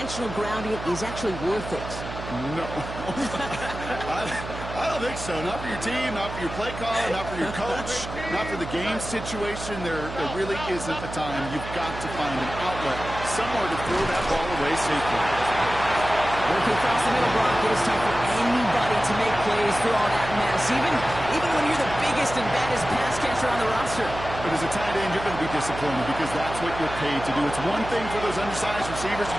grounding is actually worth it? No. I don't think so. Not for your team, not for your play caller, not for your coach, not for the game situation. There really isn't a time. You've got to find an outlet, somewhere to throw that ball away safely. Working across the middle, Brock, it is tough for anybody to make plays through all that mess, even when you're the biggest and baddest pass catcher on the roster. But as a tight end, you're going to be disappointed because that's what you're paid to do. It's one thing for those undersized receivers you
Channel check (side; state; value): right; noise; hum, 10 dB below the sound